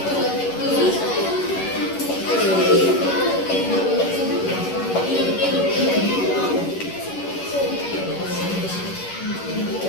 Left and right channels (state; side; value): late; right; 11 ms